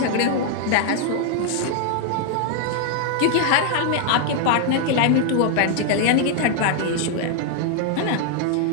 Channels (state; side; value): different; both; correlation 0.00